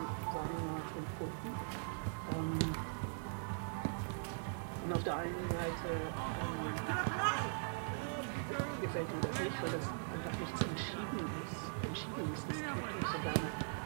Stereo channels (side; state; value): left; silent; digital silence